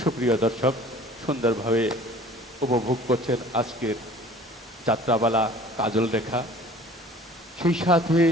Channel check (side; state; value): both; normal; correlation 0.48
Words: দর্শক, সুন্দরভাবে উপভোগ করছেন আজকের যাত্রাপালা কাজল রেখা। সেই সাথে